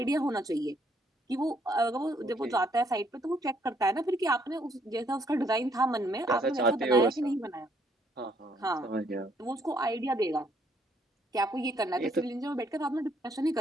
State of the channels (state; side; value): normal; both; correlation 0.69